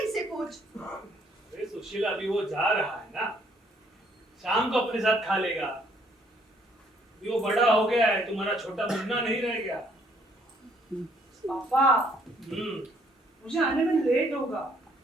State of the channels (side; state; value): both; normal; correlation 0.66